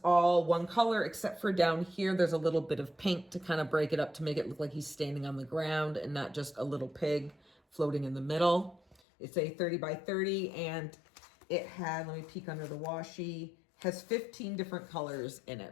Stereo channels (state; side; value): drops out; right; at 9.0 s